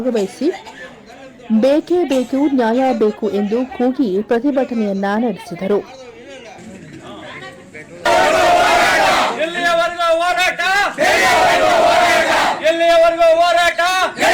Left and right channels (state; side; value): identical; both; correlation 1.00